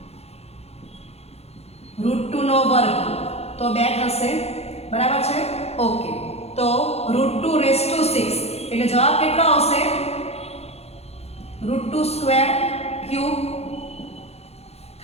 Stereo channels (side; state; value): right; late; 0.30 ms